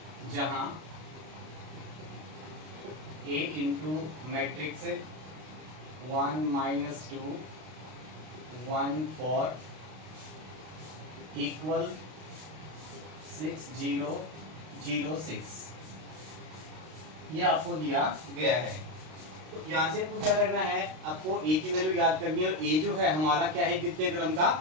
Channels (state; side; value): late; left; 32 ms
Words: जहां a इंटू मैट्रिक्स 1 - 2 1 4 इक्वल 6 0 0 6 ये आपको दिया गया है। तो यहाँ से आपको क्या करना है, आपको ए की वैल्यू याद करनी है और ए जो है हमारा क्या है, द्वितीय क्रम का